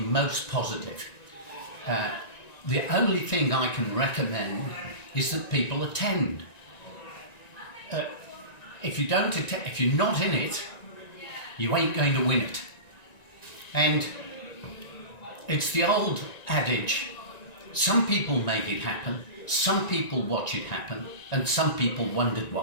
most positive. The only thing I can recommend is that people attend. If you don't attend, if you're not in it, you ain't going to win it. And it's the old adage, some people make it happen, some people watch it happen, and some people wondered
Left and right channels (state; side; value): late; right; 1.9 ms